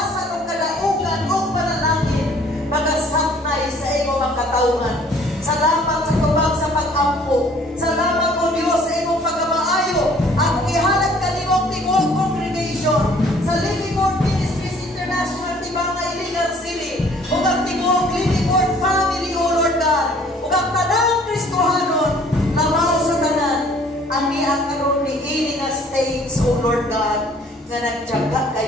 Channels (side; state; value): both; normal; correlation 0.56